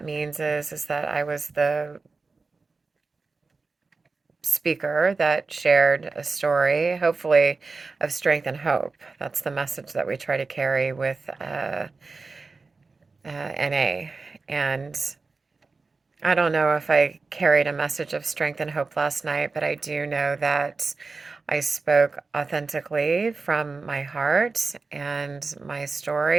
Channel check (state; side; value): quieter; left; 4.1 dB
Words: means is that I was the speaker that shared a story, hopefully of strength and hope. That's the message that we try to carry with NA. And I don't know if I carried a message of strength and hope last night, but I do know that I spoke authentically from my heart and my